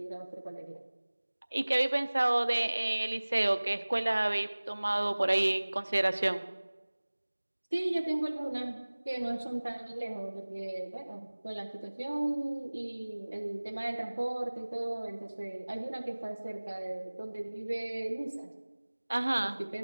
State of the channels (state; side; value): inverted; both; correlation -1.00